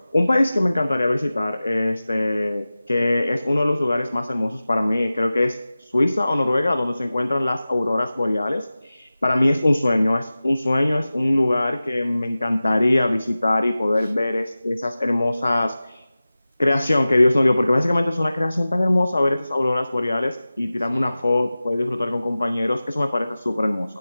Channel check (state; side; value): inverted; both; correlation -0.96